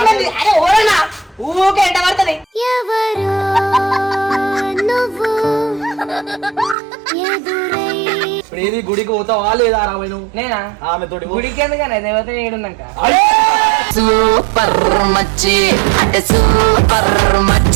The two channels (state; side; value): drops out; left; at 6.8 s